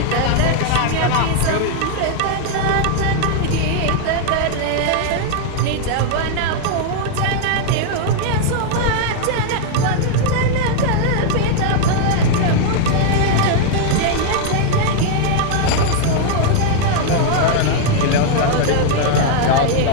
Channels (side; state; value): both; different; correlation 0.00